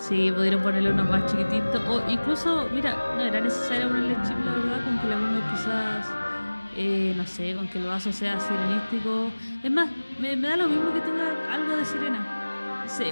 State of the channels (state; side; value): inverted; both; correlation -1.00